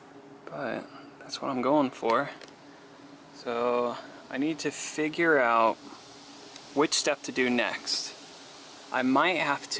But that's what I'm going for. So I need to figure out which step to do next. I might have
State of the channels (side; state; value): both; identical; correlation 1.00